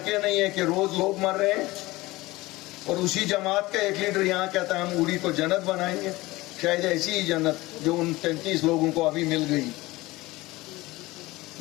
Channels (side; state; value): right; quieter; 20.0 dB